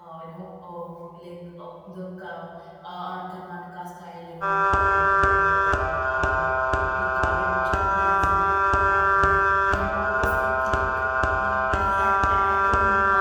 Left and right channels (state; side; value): identical; both; correlation 1.00